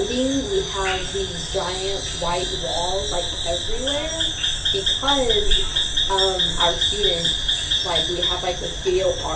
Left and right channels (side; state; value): both; identical; correlation 1.00